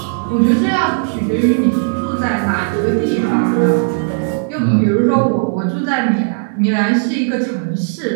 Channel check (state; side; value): silent; left; digital silence